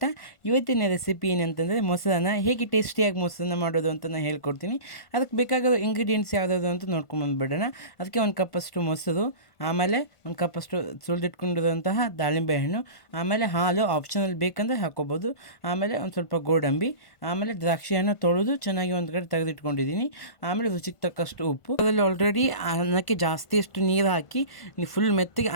ಇವತ್ತಿನ ರೆಸಿಪಿ ಏನಂತಂದರೆ ಮೊಸರನ್ನ ಹೇಗೆ ಟೇಸ್ಟಿಯಾಗಿ ಮೊಸರನ್ನ ಮಾಡೋದು ಅಂತ ನಾನು ಹೇಳ್ಕೊಡ್ತೀನಿ. ಅದಕ್ಕೆ ಬೇಕಾಗಿರೋ ಇಂಗ್ರೀಡಿಯೆಂಟ್ಸ್ ಯಾವುದಾದ್ರು ಅಂತ ನೋಡ್ಕೊಂಬಂದುಬಿಡೋಣ. ಅದಕ್ಕೆ 1 ಕಪ್ಪಷ್ಟು ಮೊಸರು, ಆಮೇಲೆ 1 ಕಪ್ಪಷ್ಟು ಸುಲಿದಿಟ್ಕೊಂಡಿರುವಂತಹ ದಾಳಿಂಬೆ ಹಣ್ಣು, ಆಮೇಲೆ ಹಾಲು ಆಪ್ಷನಲ್ ಬೇಕಂದರೆ ಹಾಕ್ಕೋಬೋದು, ಆಮೇಲೆ ಒಂದು ಸ್ವಲ್ಪ ಗೋಡಂಬಿ, ಆಮೇಲೆ ದ್ರಾಕ್ಷಿ ಹಣ್ಣು ತೊಳೆದು ಚೆನ್ನಾಗಿ ಒಂದು ಕಡೆ ತೆಗೆದಿಟ್ಕೊಂಡಿದ್ದೀನಿ, ಆಮೇಲೆ ರುಚಿಗೆ ತಕ್ಕಷ್ಟು ಉಪ್ಪು. ಅದರಲ್ಲಿ ಆಲ್ರೆಡಿ ಅನ್ನಕ್ಕೆ ಜಾಸ್ತಿಯಷ್ಟು ನೀರು ಹಾಕಿ ಫುಲ್ ಮೆತ್ತಗೆ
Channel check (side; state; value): right; late; 1.5 ms